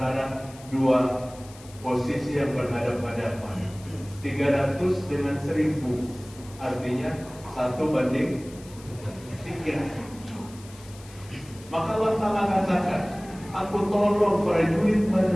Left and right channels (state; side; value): noise; left; hiss, 21 dB below the sound